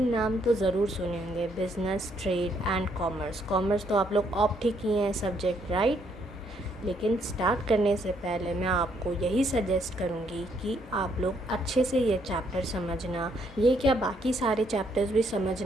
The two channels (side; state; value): both; normal; correlation 0.71